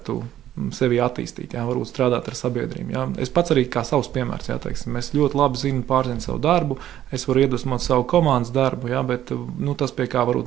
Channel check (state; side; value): quieter; left; 12.0 dB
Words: sevi attīstīt, jā, varbūt strādāt ar sabiedrību. Jā. Es pats arī kā savs piemērs, jā, teiksim, es ļoti labi pārzinu savu darbu, es varu iedvesmot savu komandas darbu, jā, bet tas, pie kā